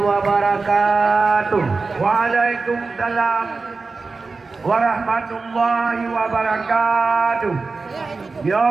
Waalaikumsalam warahmatullahi wabarakatuh. Ya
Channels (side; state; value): left; quieter; 4.1 dB